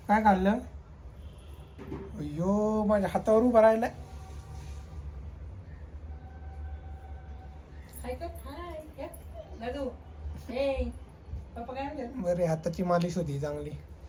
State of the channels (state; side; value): identical; both; correlation 1.00